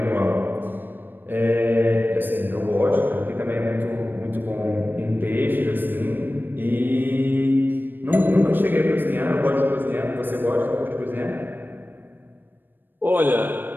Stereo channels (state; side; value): late; left; 0.094 ms